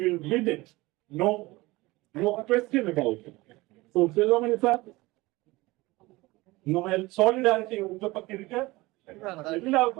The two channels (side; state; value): left; quieter; 21.0 dB